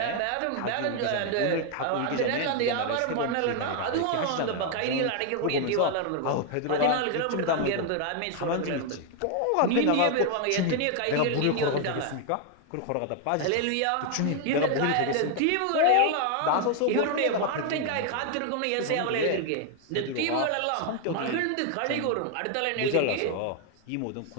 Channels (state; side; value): different; both; correlation 0.00